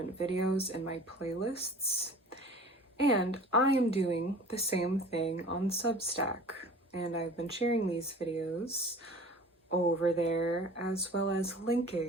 videos in my playlists, and I am doing the same thing on Substack. And I've been sharing these videos over there, as well as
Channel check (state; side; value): normal; both; correlation 0.43